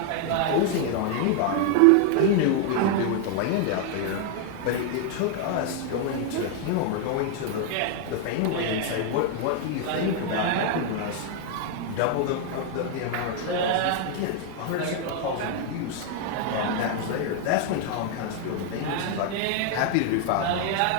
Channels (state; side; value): different; both; correlation 0.00